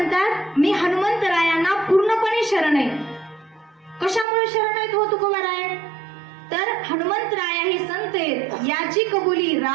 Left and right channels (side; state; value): left; drops out; at 4.2 s